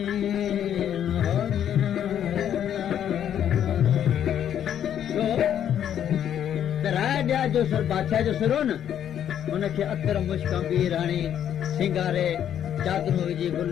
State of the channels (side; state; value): right; quieter; 9.8 dB